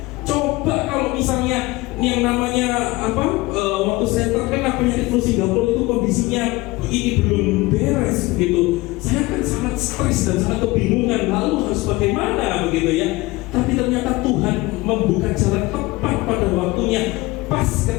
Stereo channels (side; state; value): right; quieter; 21.2 dB